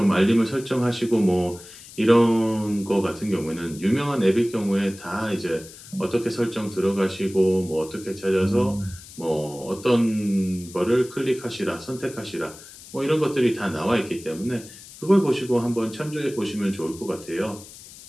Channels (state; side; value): noise; left; hiss, 18 dB below the sound